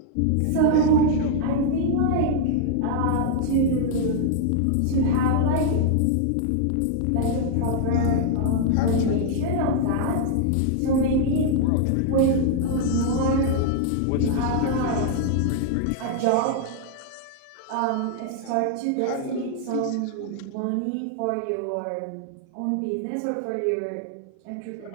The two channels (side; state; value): both; different; correlation 0.00